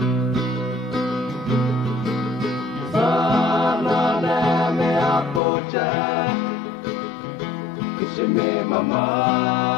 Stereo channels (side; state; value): right; drops out; at 5.4 s